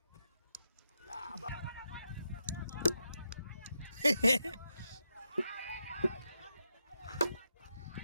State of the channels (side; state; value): both; inverted; correlation -0.85